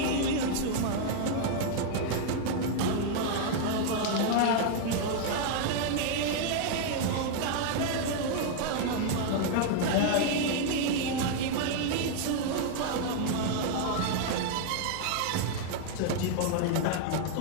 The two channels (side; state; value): both; different; correlation 0.00